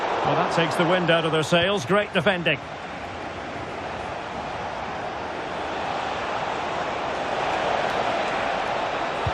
Well, that takes the wind out of their sails. Great defending.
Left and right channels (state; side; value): identical; both; correlation 1.00